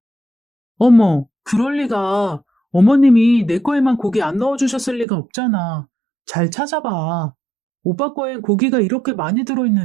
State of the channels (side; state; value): left; drops out; at 5.1 s